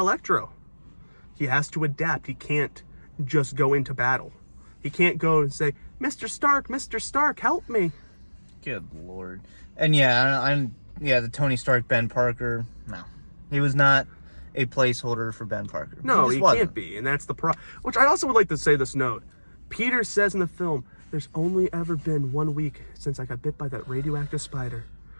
He has to adapt. He can't just go into battle. He can't go and say, Mr. Stark, help me. Good Lord. And yeah, the Tony Stark, Ben Parker, no. He was not a placeholder for Ben Parker. No, he can't be, and that's the problem. Which I also would like to say this note. Peter says in the film, there's only ever been 1 week since I got bit by that radioactive spider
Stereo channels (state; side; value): inverted; both; correlation -1.00